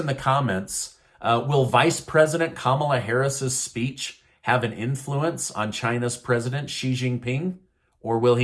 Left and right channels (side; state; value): both; identical; correlation 1.00